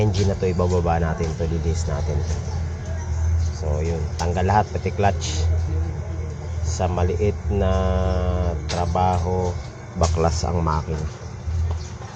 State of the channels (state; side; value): identical; both; correlation 1.00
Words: na to ibababa natin to, lilihis natin to. So yun, tanggal lahat pati clutch. Sa maliit na trabaho, baklas ang makina.